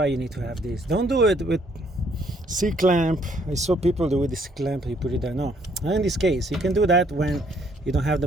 you need to have this. Don't do it with C-clamp. I saw people do with this clamp, you put it there. No, in this case you can do that when you don't have the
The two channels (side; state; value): both; normal; correlation 0.66